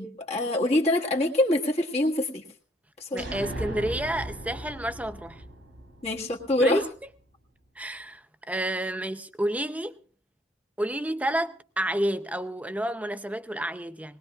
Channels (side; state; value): both; normal; correlation 0.66